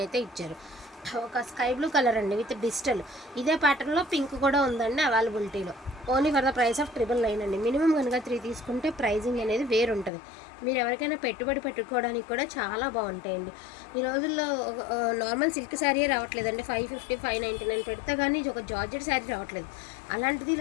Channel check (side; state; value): right; drops out; at 10.1 s